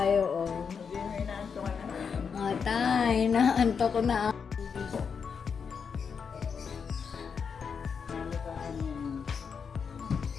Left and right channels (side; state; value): right; quieter; 6.2 dB